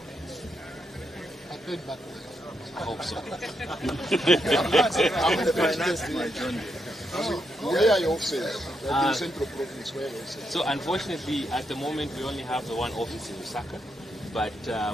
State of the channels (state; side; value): normal; both; correlation 0.81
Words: I paid back. I hope so. I'm financing my journey. Where are your offices? In Central Province, where are your offices? So unfortunately, at the moment, we only have the one office in Lusaka, but